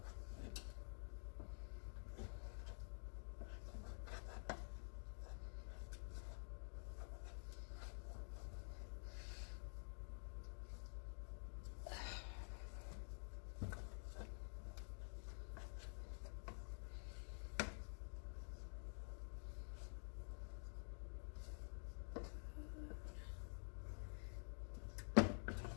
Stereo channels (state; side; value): silent; right; digital silence